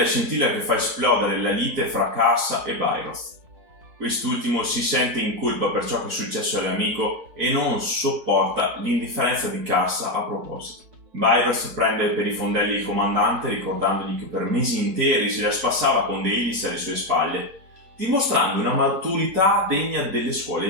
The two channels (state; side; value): late; left; 4.6 ms